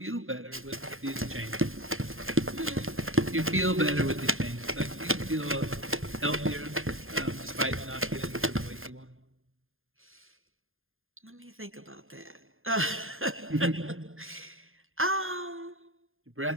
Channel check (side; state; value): left; late; 0.60 ms